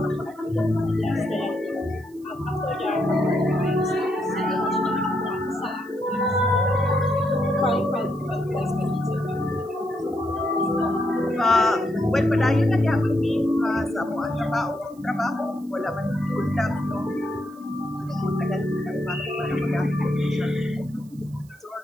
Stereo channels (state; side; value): noise; right; hiss, 29 dB below the sound